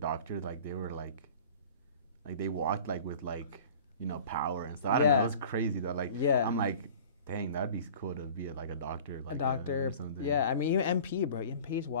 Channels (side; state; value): both; inverted; correlation -0.44